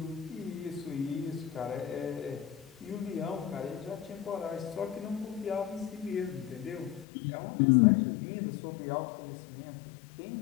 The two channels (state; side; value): drops out; right; at 7.1 s